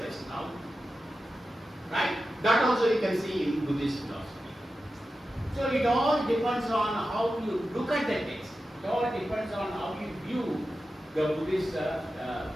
now. Right? That also you can see in Buddhist philosophy. So it all depends on how you look at the text. It all depends on how you view the Buddhist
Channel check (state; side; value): normal; both; correlation 0.92